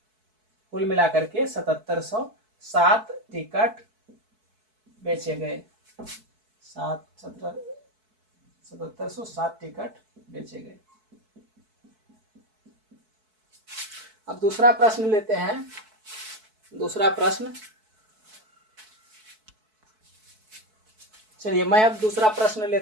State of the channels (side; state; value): left; late; 4.6 ms